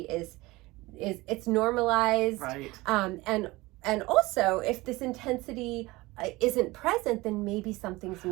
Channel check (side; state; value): left; quieter; 21.1 dB